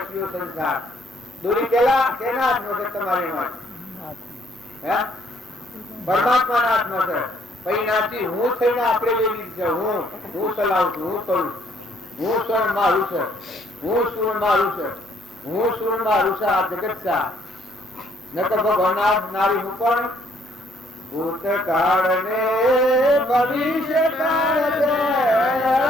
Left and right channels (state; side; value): normal; both; correlation 0.66